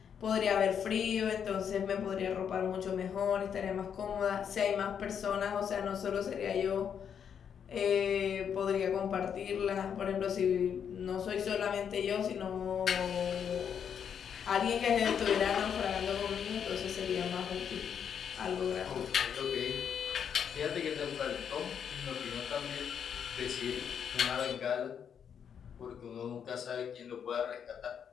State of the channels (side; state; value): right; quieter; 7.9 dB